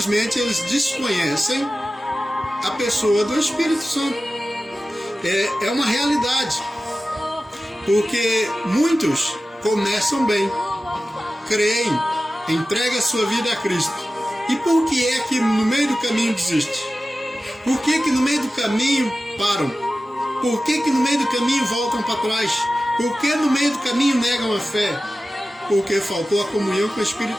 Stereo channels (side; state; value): both; normal; correlation 0.95